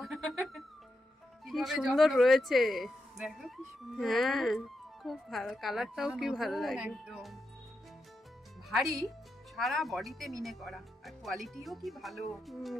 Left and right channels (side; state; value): both; normal; correlation 0.86